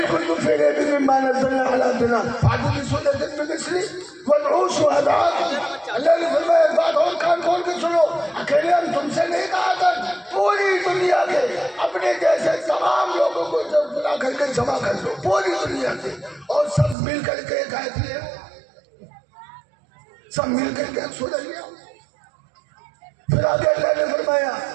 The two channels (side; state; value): left; drops out; at 16.9 s